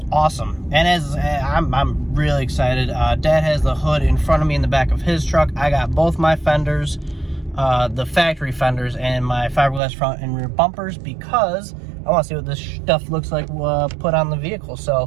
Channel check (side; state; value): left; drops out; at 9.8 s